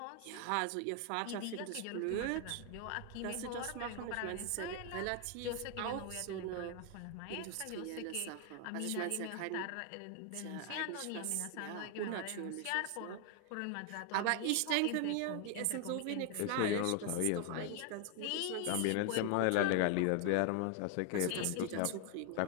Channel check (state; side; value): different; both; correlation 0.00